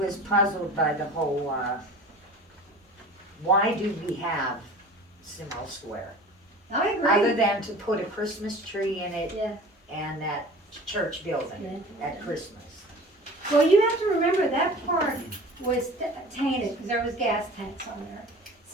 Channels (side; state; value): both; normal; correlation 0.41